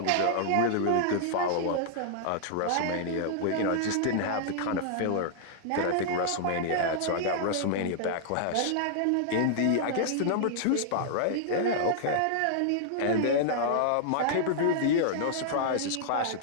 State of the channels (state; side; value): different; both; correlation -0.01